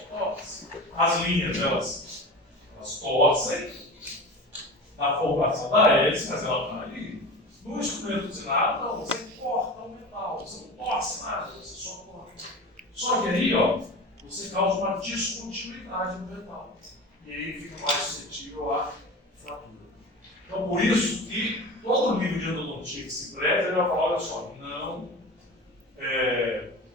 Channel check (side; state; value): both; normal; correlation 0.32